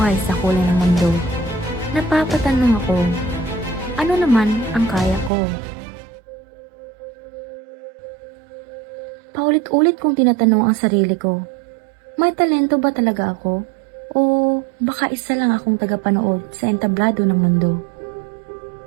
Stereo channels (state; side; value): drops out; left; at 5.3 s